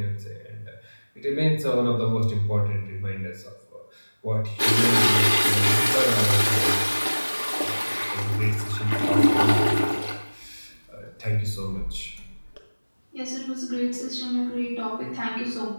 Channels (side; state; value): both; inverted; correlation -1.00